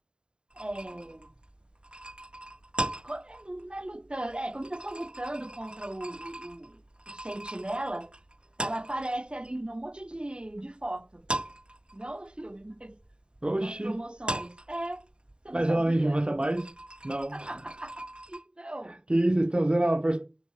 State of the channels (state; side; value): late; left; 0.050 ms